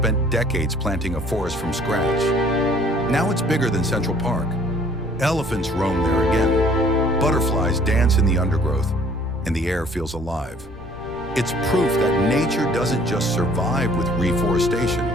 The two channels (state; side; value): normal; both; correlation 0.57